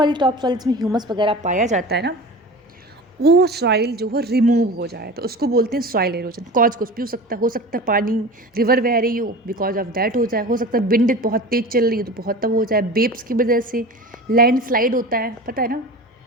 टॉप सॉइल जिसमें ह्यूमस वगैरह पाया जाता है ना, वो सॉइल जो है रिमूव हो जाए तो उसको बोलते हैं सॉइल एरोजन। कॉज कुछ भी हो सकता है पानी, रिवर बह रही हो, बिकॉज ऑफ दैट हो जाए। हो सकता है विंड बहुत तेज चल रही हो तो बहुत तब हो जाए, वेव्स की वजह से। लैंड स्लाइड होता है, पता है ना,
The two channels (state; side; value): normal; both; correlation 0.34